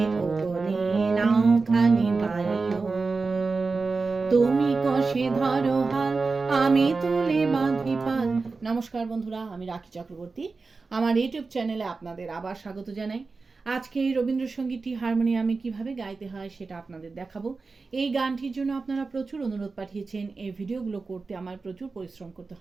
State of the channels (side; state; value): left; quieter; 4.1 dB